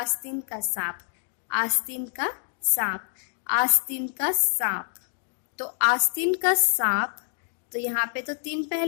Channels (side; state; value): right; silent; 60 dB below the other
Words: का सांप। तो आस्तीन का सांप, तो यहाँ पे तो 3